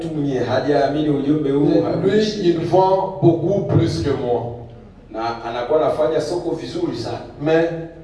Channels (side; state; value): both; identical; correlation 1.00